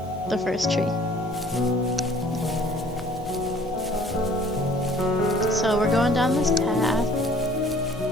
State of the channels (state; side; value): noise; left; hum, 22 dB below the sound